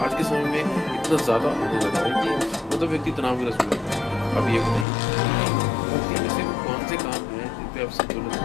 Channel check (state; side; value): drops out; right; at 4.9 s